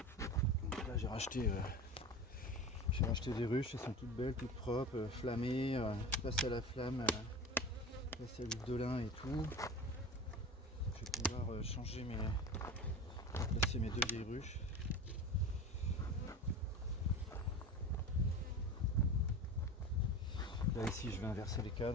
Donc là j'ai racheté des ruches, elles sont toutes belles, toutes propres, flammées, passées à la flamme, passées à l'huile de lin et tout. Je vais pouvoir placer mes deux vieilles ruches. Là ici je vais inverser les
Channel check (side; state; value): both; normal; correlation 0.31